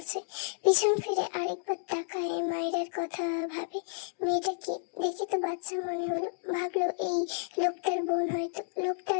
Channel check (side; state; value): right; silent; digital silence